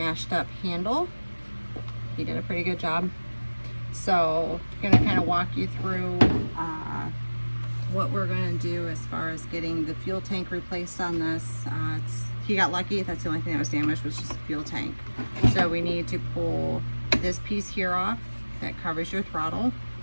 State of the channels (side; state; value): both; inverted; correlation -1.00